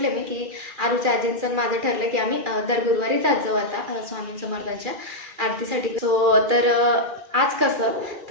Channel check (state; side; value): late; left; 2.4 ms